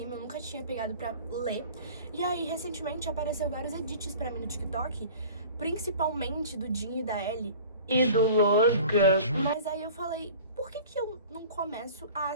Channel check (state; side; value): inverted; both; correlation -0.43